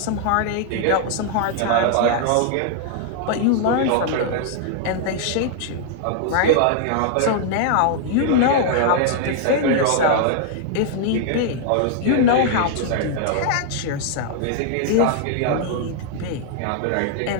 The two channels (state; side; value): different; both; correlation -0.01